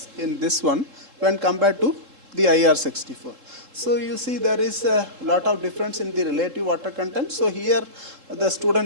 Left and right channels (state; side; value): late; left; 3.7 ms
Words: in this one when compared to the IR64. So you see there is a lot of difference in the relative water content. So here the